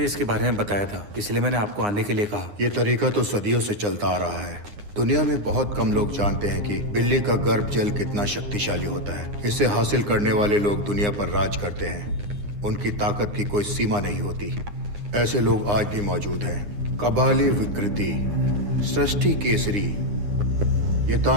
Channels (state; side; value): late; left; 9.7 ms